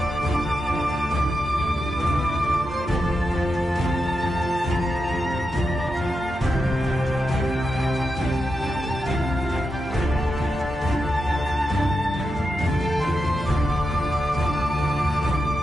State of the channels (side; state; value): both; normal; correlation 0.87